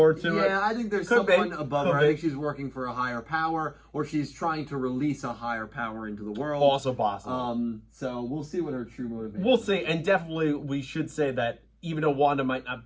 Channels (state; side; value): identical; both; correlation 1.00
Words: to it. Yeah, I think there's someone above her. I think she's working for a higher power, or she's trying to release a higher power into the world. Also possible. So we'll see what her true motivation. We'll see, and definitely we should say that even though Wanda might not